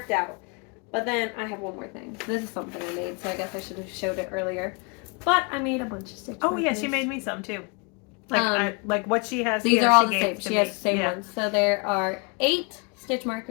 out. But then I have one more thing. This is something I made, so I guess I should have showed it earlier. But I made a bunch of stitch markers. Yeah, she made me some too. Like what she has. These here, are all she the gave same. to She me. has the same ones. So there are 8 stitch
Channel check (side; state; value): right; quieter; 32.3 dB